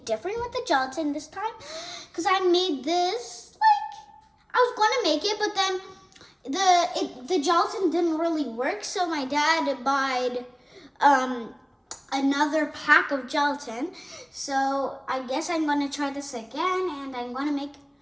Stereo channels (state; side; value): identical; both; correlation 1.00